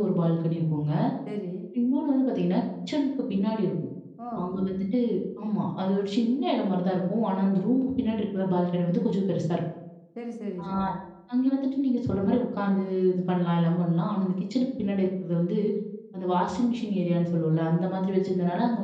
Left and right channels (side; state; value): both; identical; correlation 1.00